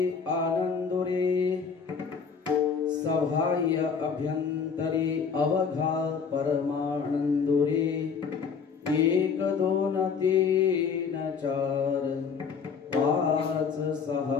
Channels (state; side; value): quieter; right; 6.0 dB